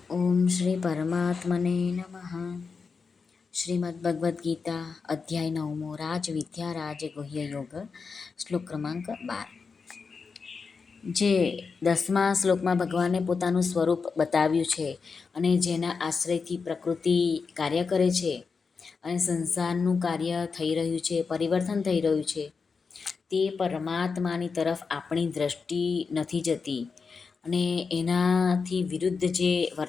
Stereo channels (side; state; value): right; quieter; 5.1 dB